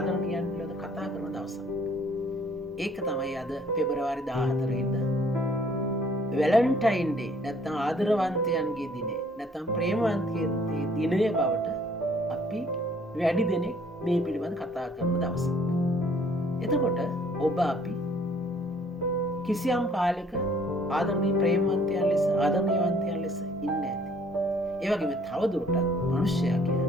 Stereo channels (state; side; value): normal; both; correlation 0.60